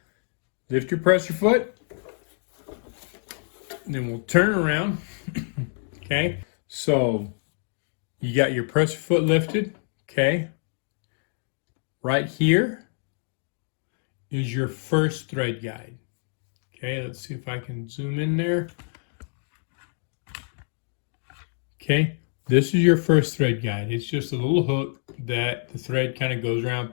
lift your presser foot. Then we'll turn around. Okay, so you got your presser foot lifted, okay? Right here is your first thread guide. Okay, let's see if I can zoom in there. Okay, this is your first thread guide. It's just a little hook that the thread kind of goes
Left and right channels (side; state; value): right; silent; 61 dB below the other